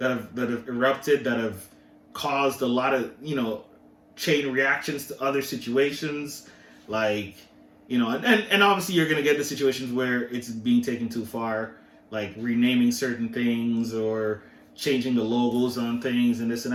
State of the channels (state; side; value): identical; both; correlation 1.00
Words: have erupted, that have caused a lot of, chain reactions to other situations, like, and obviously you're going to get the situations where it's being taken too far, like renaming certain things or changing the logos on things and this and